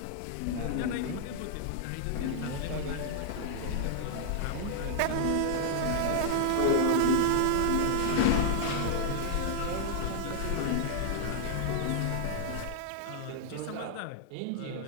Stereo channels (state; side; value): different; both; correlation 0.00